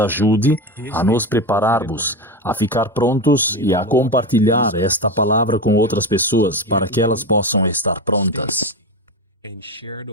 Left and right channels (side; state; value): both; normal; correlation 0.20